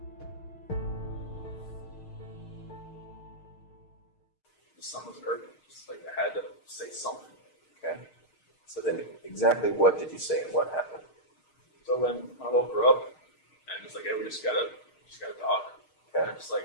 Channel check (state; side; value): late; right; 6.5 ms